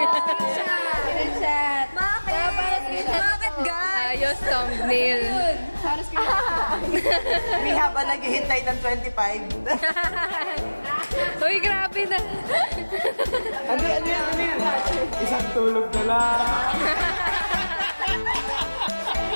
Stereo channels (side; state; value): both; inverted; correlation -1.00